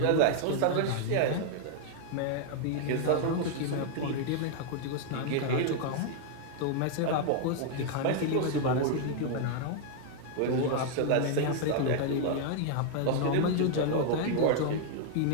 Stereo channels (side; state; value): both; different; correlation 0.00